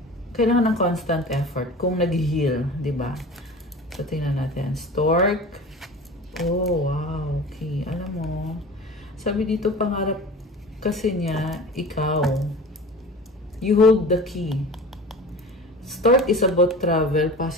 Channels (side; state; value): both; normal; correlation 0.36